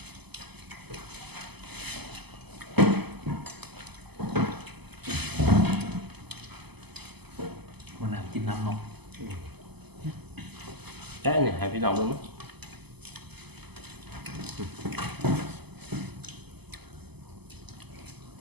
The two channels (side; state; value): left; late; 0.98 ms